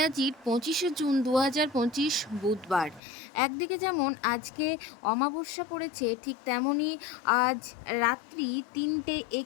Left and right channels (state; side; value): drops out; right; at 3.0 s